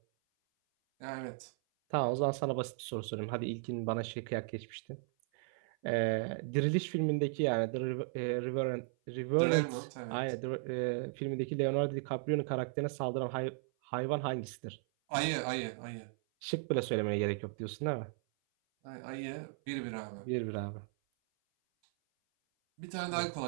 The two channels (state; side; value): silent; left; 54 dB below the other